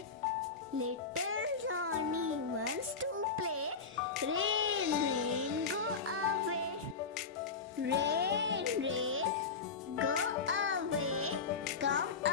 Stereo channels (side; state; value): right; quieter; 5.0 dB